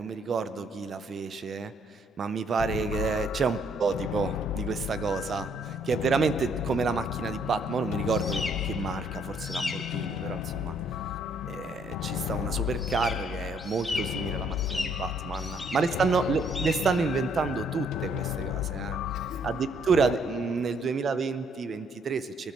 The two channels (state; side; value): normal; both; correlation 0.67